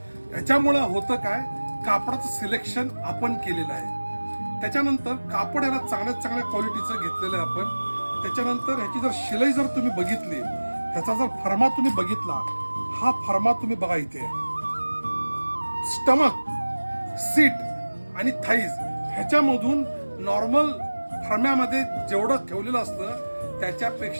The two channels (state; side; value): inverted; both; correlation -1.00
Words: याच्यामुळं होतं काय, कापडाचं सिलेक्शन आपण केलेलं आहे. त्याच्यानंतर कापड याला चांगल्या क्वालिटीचं घेतलेलं आहे आपण. त्याच्यानंतर ह्याची जर शिलाई जर तुम्ही बघितली, ह्याचा जर फर्मा तुम्ही बघितला, हा फर्मा तुम्ही बघा इथे. स्टमक, सीट आणि थाईज ह्याच्यामधून नॉर्मल फर्म्यामध्ये जेवढं ठेवलेलं असतं